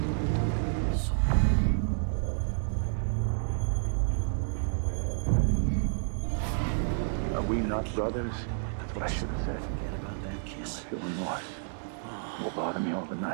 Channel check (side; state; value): left; silent; digital silence